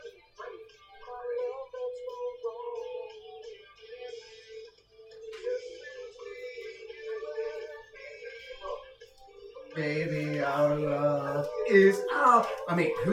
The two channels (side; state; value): both; identical; correlation 1.00